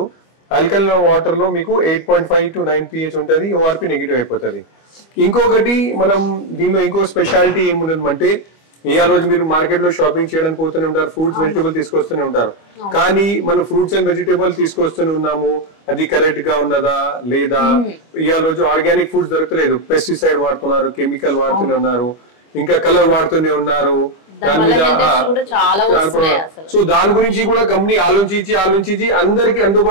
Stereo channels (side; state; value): right; late; 25 ms